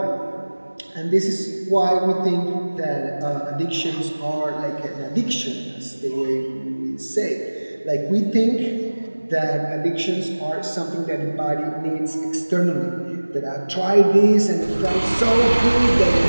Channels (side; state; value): both; inverted; correlation -1.00